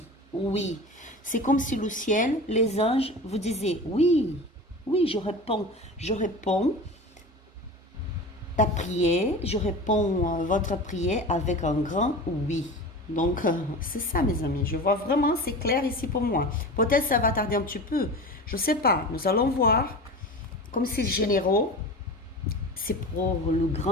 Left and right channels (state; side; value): normal; both; correlation 0.32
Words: oui. C'est comme si le ciel, les anges vous disaient oui, oui, je réponds ta prière, je réponds votre prière avec un grand oui. Donc, c'est ça, mes amis. Je vois vraiment, c'est clair ici pour moi. Peut-être ça va tarder un petit peu. Je ne sais pas. Nous allons voir. Comme c'est généraux, c'est pour le